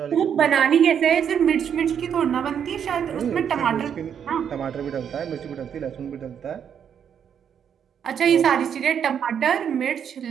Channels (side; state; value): left; quieter; 8.2 dB